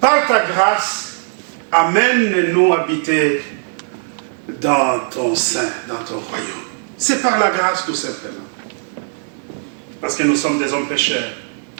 par ta grâce, amène-nous habiter dans ton sein, dans ton royaume. C'est par la grâce tout simplement. Parce que nous sommes des hommes pécheurs.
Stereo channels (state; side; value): silent; left; digital silence